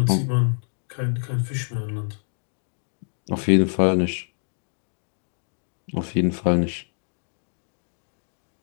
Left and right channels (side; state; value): right; silent; 61 dB below the other